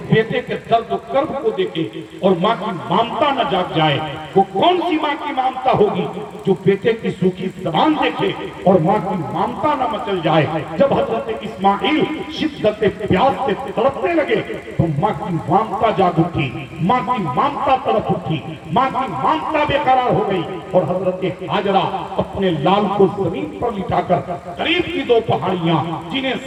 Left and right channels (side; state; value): both; identical; correlation 1.00